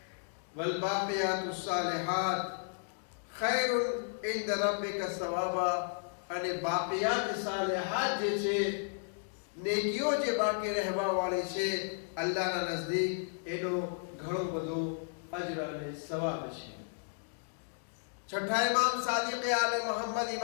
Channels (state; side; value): silent; right; digital silence